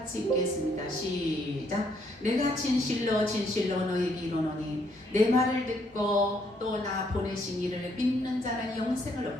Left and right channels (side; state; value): both; normal; correlation 0.70